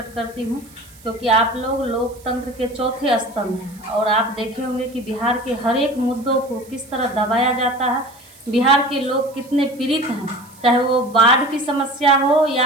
करती हूँ, क्योंकि आप लोग लोकतंत्र के चौथे स्तंभ हैं और आप देखे होंगे कि बिहार के हर एक मुद्दों को किस तरह दबाया जाता है। बिहार के लोग कितने पीड़ित हैं, चाहे वो बाढ़ की समस्या हो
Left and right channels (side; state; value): right; noise; hiss, 25 dB below the sound